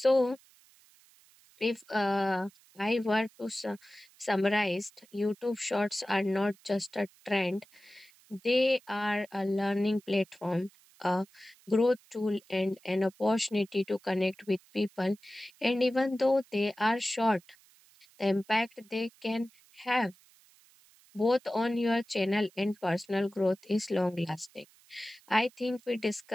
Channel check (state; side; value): noise; right; hiss, 29 dB below the sound